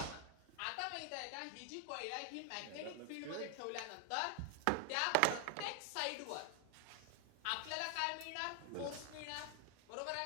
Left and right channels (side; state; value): both; different; correlation 0.00